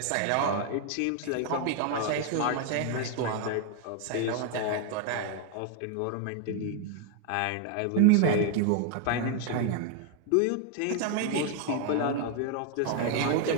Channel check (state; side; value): different; both; correlation 0.00